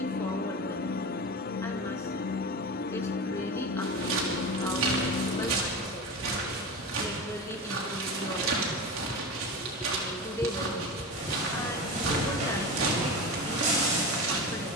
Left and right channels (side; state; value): both; normal; correlation 0.25